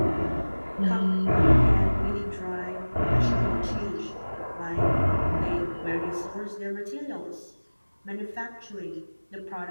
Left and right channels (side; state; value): both; inverted; correlation -1.00